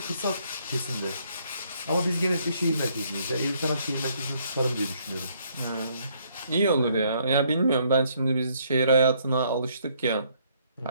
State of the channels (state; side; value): inverted; both; correlation -0.68